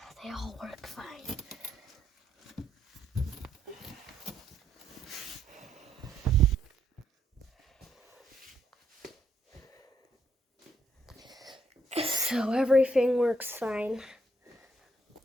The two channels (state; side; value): normal; both; correlation 0.73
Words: They all work fine. So everything works fine.